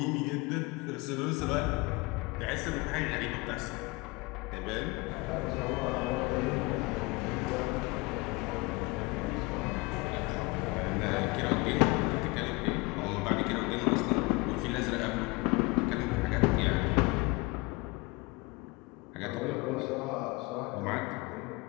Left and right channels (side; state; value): right; quieter; 25.1 dB